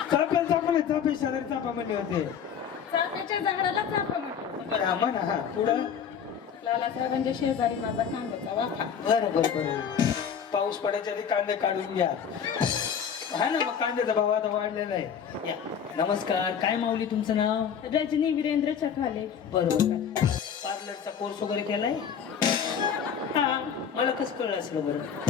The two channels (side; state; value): right; quieter; 7.6 dB